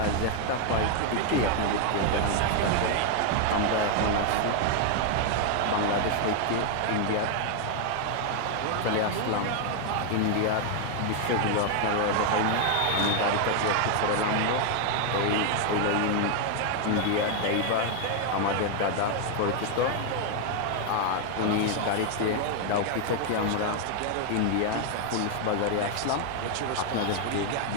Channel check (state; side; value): different; both; correlation 0.00